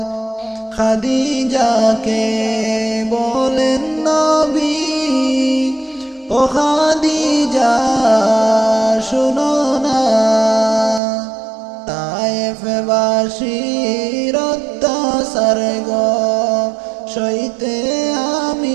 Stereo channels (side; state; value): left; drops out; at 11.0 s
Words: খাদিজাকে বলেন নবী ও খাদিজা শুনো না তায়েফবাসীর অত্যাচার গো সইতে